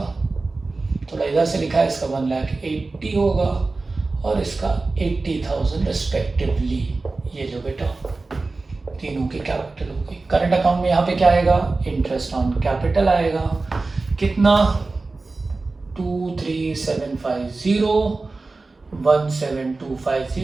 थोड़ा इधर से लिखा है, इसका 1,80,000 होगा और इसका 80,000 रिस्पेक्टिवली। ये जो बेटा तीनों की कैपिटल होगी। करंट अकाउंट में यहाँ पे क्या आएगा? इंटरेस्ट ऑन कैपिटल आएगा। कितना? 23,750,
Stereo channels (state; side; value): quieter; left; 3.6 dB